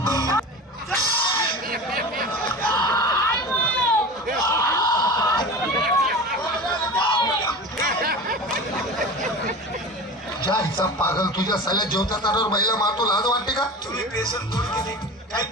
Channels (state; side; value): normal; both; correlation 0.32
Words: जायचा पागल तुझ्या साल्या जेवता ताटावर महिला मारतो लाज वाटते का तुम्ही बेसन पोळी केली काही